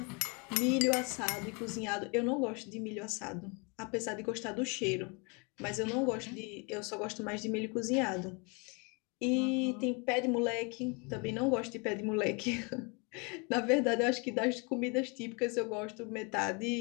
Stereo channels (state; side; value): quieter; right; 31.6 dB